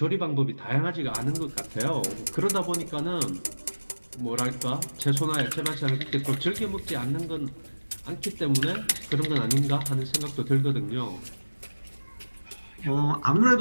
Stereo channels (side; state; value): both; inverted; correlation -1.00